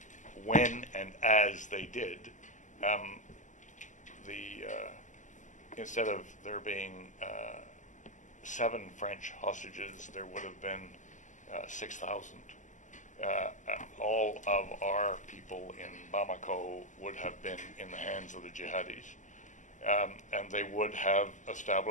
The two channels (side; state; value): right; late; 0.36 ms